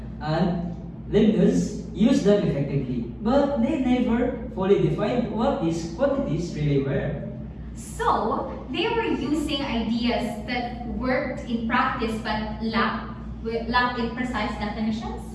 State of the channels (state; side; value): identical; both; correlation 1.00